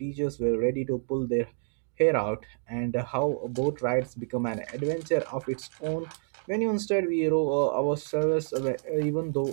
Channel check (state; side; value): silent; left; digital silence